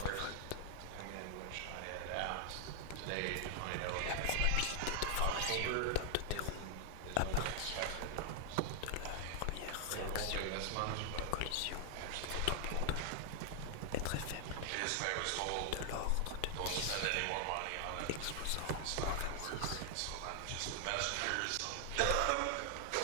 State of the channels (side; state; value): both; different; correlation 0.00